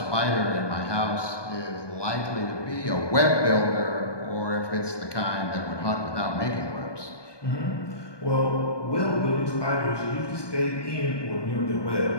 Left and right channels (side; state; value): right; late; 1.2 ms